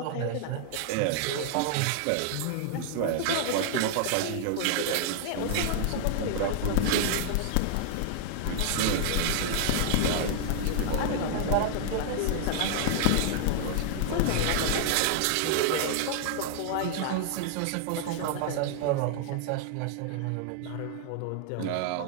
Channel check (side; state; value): both; different; correlation 0.00